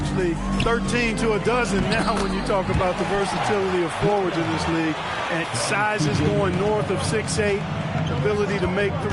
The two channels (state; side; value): identical; both; correlation 1.00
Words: 13 to a dozen now when you talk about the versatility of forwards in this league. And sizes going north of 6'8", ability to make